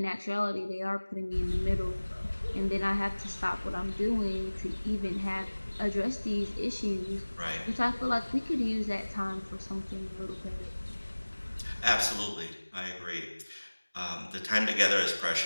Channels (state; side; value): inverted; both; correlation -1.00